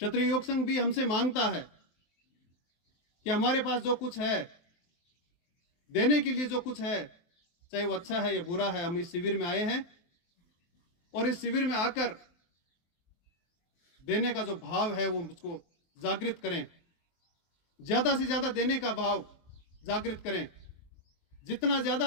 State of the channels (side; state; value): right; late; 23 ms